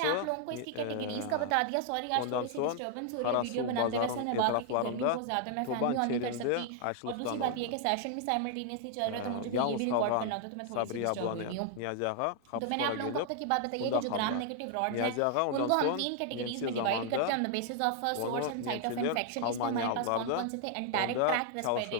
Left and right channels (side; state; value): both; different; correlation 0.00